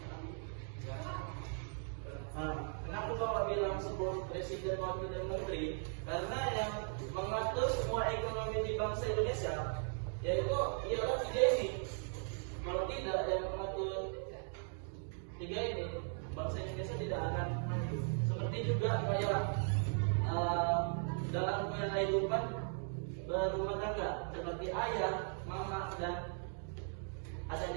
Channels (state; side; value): silent; left; 52 dB below the other